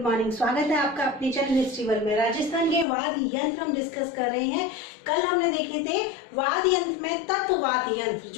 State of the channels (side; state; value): right; drops out; at 2.9 s